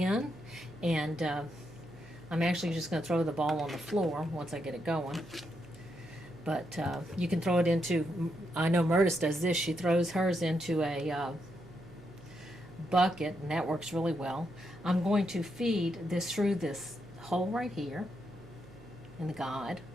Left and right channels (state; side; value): noise; right; hum, 20 dB below the sound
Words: and I'm actually just going to throw the ball on the floor once I get it going. But you can throw it into, I know Murtis does this, she throws hers into a bucket, and that works really well. I'm going to feed this through this hole right here in the guide.